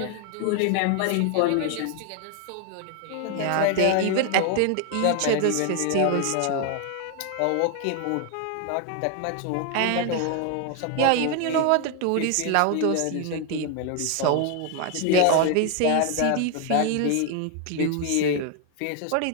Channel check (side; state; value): both; different; correlation 0.00